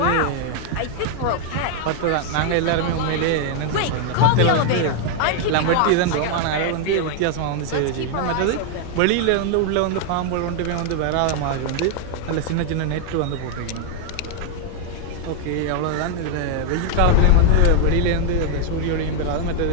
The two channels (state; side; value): different; both; correlation 0.01